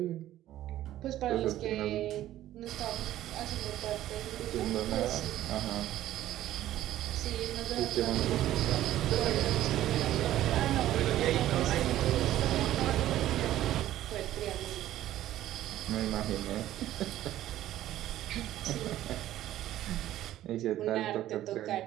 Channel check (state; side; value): quieter; left; 13.5 dB